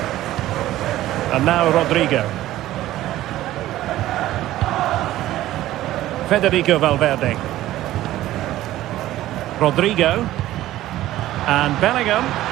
And now Rodrigo. Federico Valverde. Rodrigo. And Bellingham.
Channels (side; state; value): left; quieter; 14.7 dB